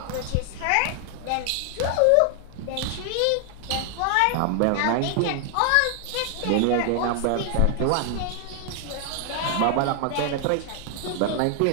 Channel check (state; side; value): different; both; correlation 0.00